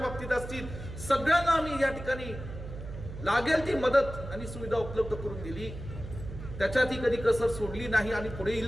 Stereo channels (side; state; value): right; noise; hum, 10 dB below the sound